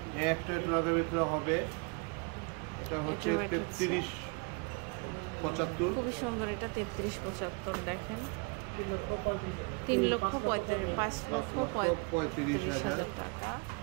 একটা লাখের ভিতরে হবে। এটা হচ্ছে 33,75। খুবই সুন্দর। এটা 33,75 দেখেন। 3,35,000 টাকা।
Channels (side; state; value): left; quieter; 32.8 dB